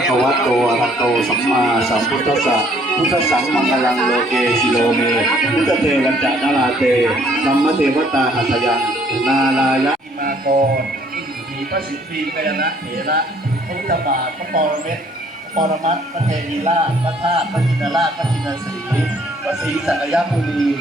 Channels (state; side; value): normal; both; correlation 0.62